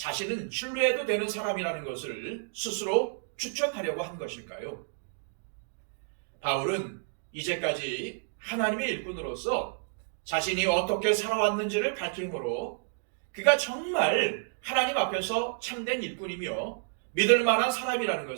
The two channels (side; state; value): left; silent; digital silence